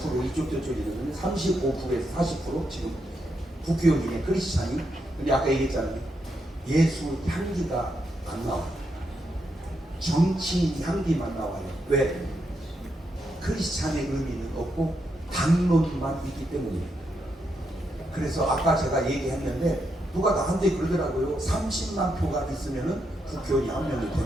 이쪽 저쪽이거든요. 35%에서 40% 지금 국회의원 중에 크리스찬이. 근데 아까 얘기했잖아요. 예수 향기가 안 나와. 정치인 향기만 나와요. 왜? 크리스찬의 의미는 없고 당론만 있기 때문이에요. 그래서 아까 제가 얘기했는데 누가 나한테 그러더라고요. 30만 표가 있으면은 국회의원이 한 명이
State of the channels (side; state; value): both; normal; correlation 0.81